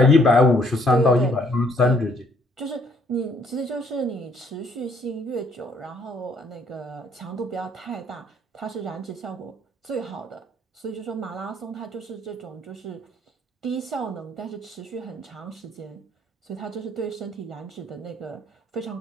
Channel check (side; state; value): both; normal; correlation 0.65